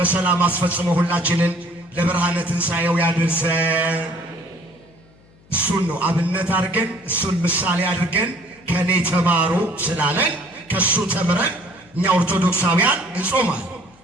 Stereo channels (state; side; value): noise; left; hum, 28 dB below the sound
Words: አስፈጽሞ ሁላችንን ለብርሃነ ትንሣኤው ያድርሰን። እሱን ነው አብነት አድርገን እሱን ምሳሌ አድርገን ከኔ ተማሩ ስላለን ከሱ ተምረን እኛ ኦርቶዶክሳውያን እንጾማል።